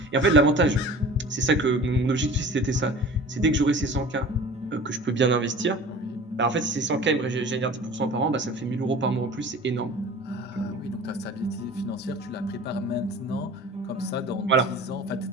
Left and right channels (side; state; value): both; normal; correlation 0.41